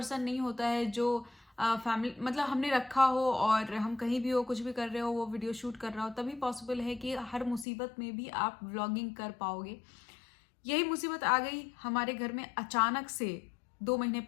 नहीं होता है जो फैमिली मतलब हमने रखा हो और हम कहीं भी हो, कुछ भी कर रहे हो, वो वीडियो शूट कर रहा हो, तभी पॉसिबल है कि हर मुसीबत में भी आप व्लॉगिंग कर पाओगे। यही मुसीबत आ गई हमारे घर में अचानक से 2 महीने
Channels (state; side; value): drops out; right; at 7.7 s